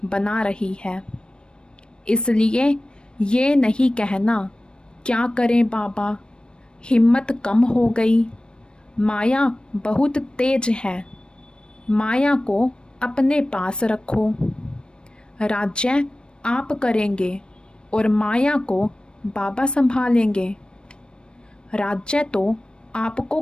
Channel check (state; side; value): late; right; 0.054 ms